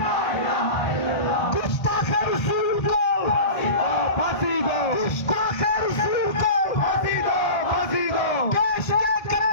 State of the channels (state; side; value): late; right; 1.3 ms